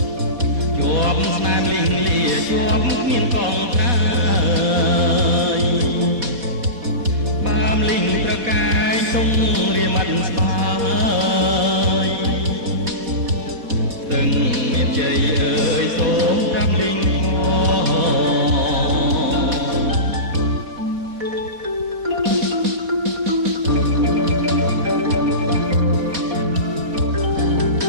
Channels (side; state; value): left; late; 4.4 ms